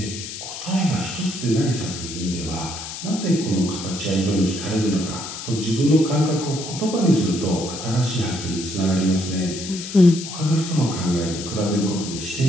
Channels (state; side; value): noise; left; hiss, 9 dB below the sound